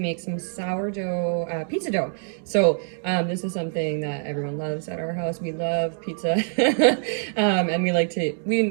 some sourdough pizza dough. So this is something that everyone loves at our house. We love pizza. And we like to,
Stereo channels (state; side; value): silent; left; digital silence